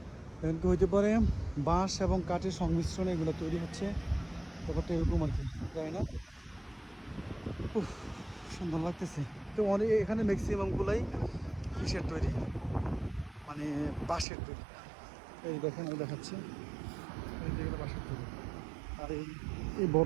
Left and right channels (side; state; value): left; drops out; at 14.2 s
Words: এখন কি হইতে পারে বাঁশ এবং কাঠের সংমিশ্রণে এগুলো তৈরি হচ্ছে, ব্যাপারটা এরকম আর কি, জানি না। উফ, সুন্দর লাগতেছে তো অনেক। এখানে ম্যাক্সিমামগুলাই কিসের তৈরি, মানে বাঁশের তৈরি। এই দেখেন, আমি দেখাচ্ছি, এই যেগুলো বাঁশের তৈরি, আর এই